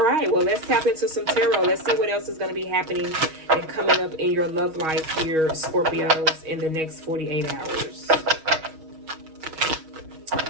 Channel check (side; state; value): left; late; 6.3 ms